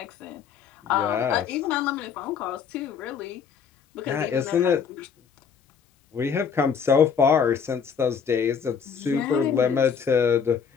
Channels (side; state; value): right; quieter; 6.7 dB